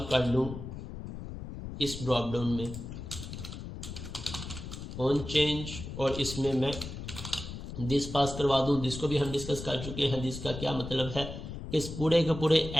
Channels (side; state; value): left; noise; rumble, 9 dB below the sound